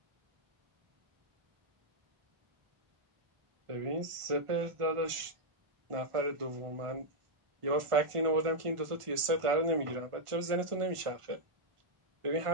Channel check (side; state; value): left; late; 1.5 ms